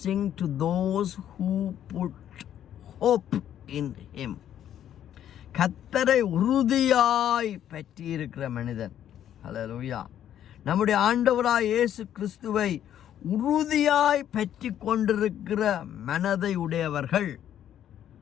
to those who put hope in him. கர்த்தரை உறுதியாய் பற்றி இருக்கிற மனிதன். ஹல்லேலூயா. நம்முடைய ஆண்டவராய் இயேசு கிறிஸ்துவை உறுதியாய் பற்றி கொண்டிருக்கிற மனதை உடையவர்கள்,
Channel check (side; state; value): right; quieter; 10.6 dB